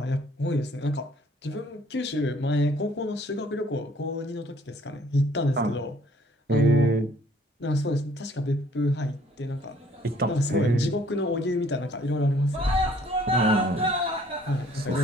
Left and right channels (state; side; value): normal; both; correlation 0.59